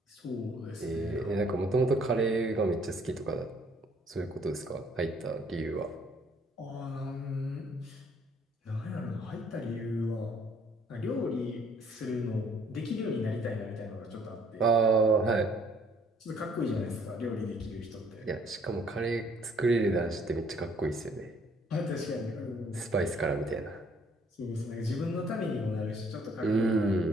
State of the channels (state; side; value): normal; both; correlation 0.62